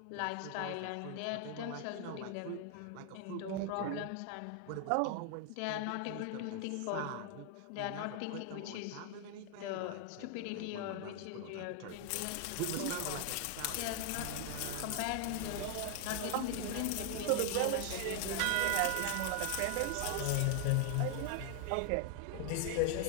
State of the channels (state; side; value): different; both; correlation 0.00